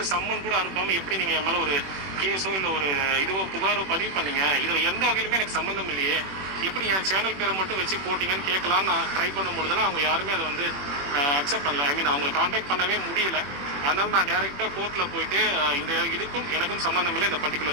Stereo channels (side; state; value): left; late; 21 ms